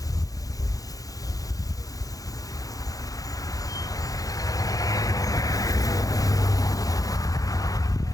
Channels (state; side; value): late; right; 0.17 ms